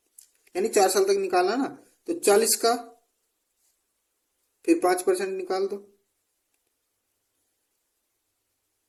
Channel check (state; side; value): identical; both; correlation 1.00